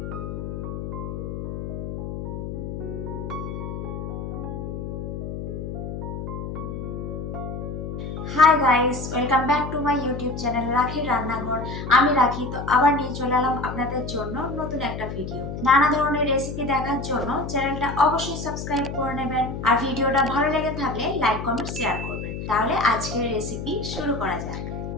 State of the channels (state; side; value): noise; left; hum, 6 dB below the sound